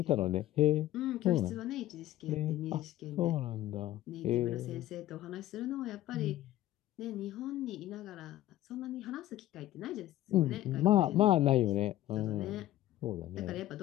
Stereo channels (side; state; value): right; quieter; 14.2 dB